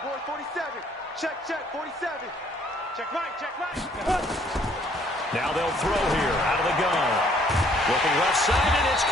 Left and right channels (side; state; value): both; normal; correlation 0.63